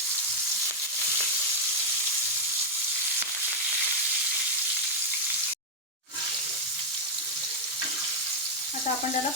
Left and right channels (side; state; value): both; normal; correlation -0.02